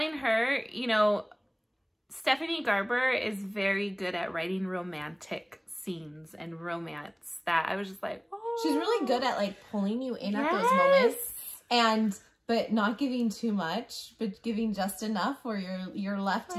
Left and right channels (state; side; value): identical; both; correlation 1.00